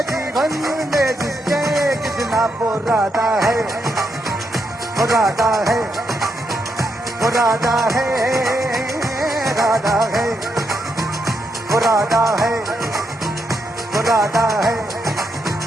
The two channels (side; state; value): both; normal; correlation 0.80